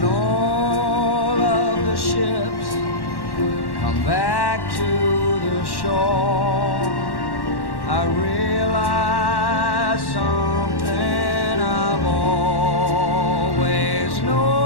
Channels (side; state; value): right; late; 1.1 ms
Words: all of the ships come back to the shore. I realize something I've always